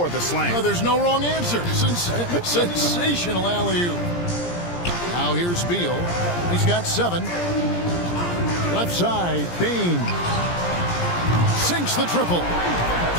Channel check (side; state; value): right; late; 17 ms